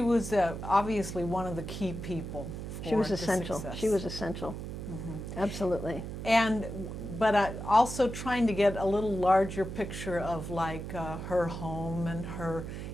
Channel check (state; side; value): noise; right; hum, 7 dB below the sound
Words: was obviously one of the key people for the success. She was essential. Absolutely. But also trying to get a little larger picture of like her home and her,